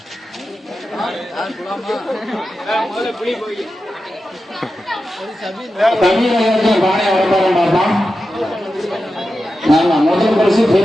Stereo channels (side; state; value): both; normal; correlation 0.91